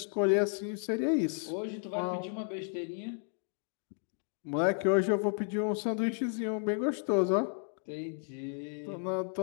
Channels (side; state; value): right; silent; 56 dB below the other